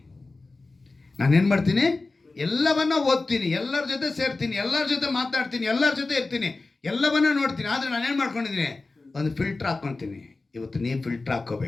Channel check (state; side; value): quieter; right; 3.5 dB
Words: ನಾನೇನು ಮಾಡ್ತೀನಿ? ಎಲ್ಲವನ್ನ ಓದ್ತೀನಿ, ಎಲ್ಲರ ಜೊತೆ ಸೇರ್ತೀನಿ, ಎಲ್ಲರ ಜೊತೆ ಮಾತಾಡ್ತೀನಿ, ಎಲ್ಲರ ಜೊತೆ ಇರ್ತೀನಿ, ಎಲ್ಲವನ್ನ ನೋಡ್ತೀನಿ. ಆದರೆ ನಾನೇನು ಮಾಡ್ಕೊಂಡಿದ್ದೀನಿ? ಒಂದು ಫಿಲ್ಟ್ರ್ ಹಾಕ್ಕೊತೀನಿ. ಇವತ್ತು ನೀವು ಫಿಲ್ಟ್ರ್